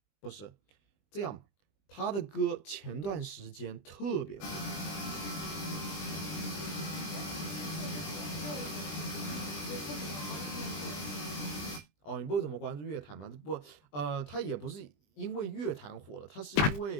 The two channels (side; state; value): right; late; 20 ms